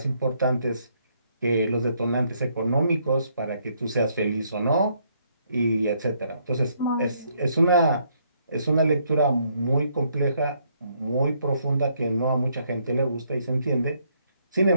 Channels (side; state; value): both; inverted; correlation -0.71